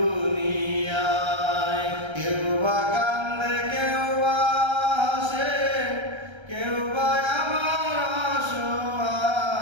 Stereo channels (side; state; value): left; late; 1.3 ms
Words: কেউ বা কান্দে কেউ বা হাসে, কেউ বা আমার